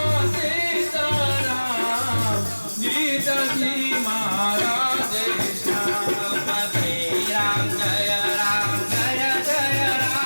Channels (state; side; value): inverted; both; correlation -1.00